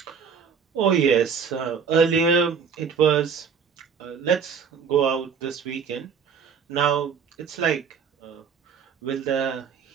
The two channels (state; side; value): quieter; left; 6.5 dB